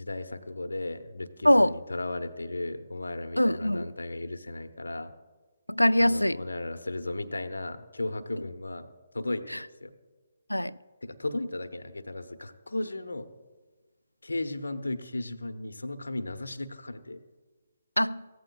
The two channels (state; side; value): inverted; both; correlation -0.99